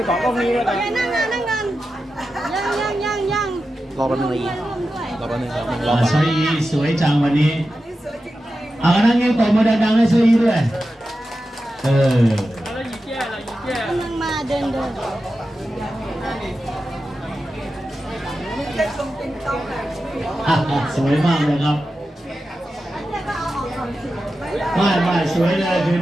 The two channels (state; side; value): normal; both; correlation 0.92